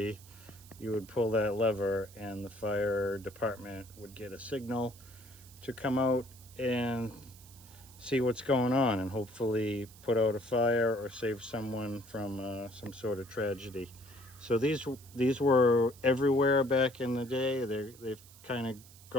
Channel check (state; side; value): noise; right; hiss, 22 dB below the sound